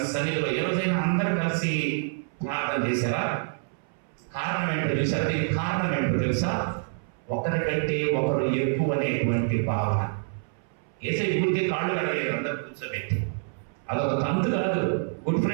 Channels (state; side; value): silent; left; 60 dB below the other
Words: సన్నిధిలో ఏ రోజైనా అందరూ కలిసి ప్రార్థన చేశారా? కారణం ఏంటో తెలుసా? దీనికి కారణం ఏంటో తెలుసా? ఒకరికంటే ఒకరు ఎక్కువ అనేటువంటి భావన. ఏసై గుడికి కాళ్ళు కడగలేదు అందరు కూర్చోబెట్టి, అదొక తంతు కాదు. గుడ్